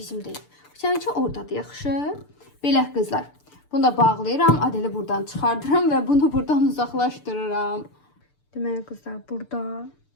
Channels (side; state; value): right; late; 6.8 ms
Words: Səninki oradadır, yaxşı. Belə qızlar. Bunu da bağlayıram, Adeli buradan çıxardıram və bunu buradan uzaqlaşdırıram. Deməli qızlar, burada